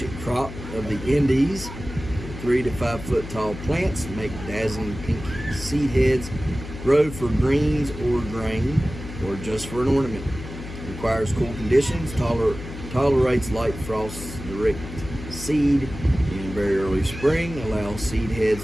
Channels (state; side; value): noise; left; hum, 11 dB below the sound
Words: crop of the Indies. 3 to 5 foot tall plants make dazzling pink seed heads. Grow for greens or grain or just for an ornament. Requires cool conditions. Tolerates light frosts. Direct seed in very early spring. Allows seed